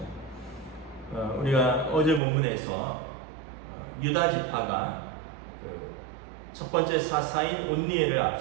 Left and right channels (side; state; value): left; drops out; at 2.2 s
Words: 우리가 어제 본문에서 유다 지파가 첫 번째 사사인 온니엘을